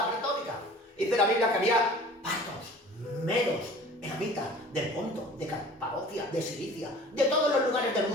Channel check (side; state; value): both; normal; correlation 0.45